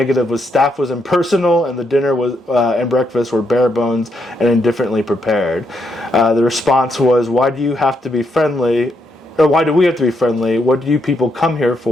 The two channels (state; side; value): normal; both; correlation 0.78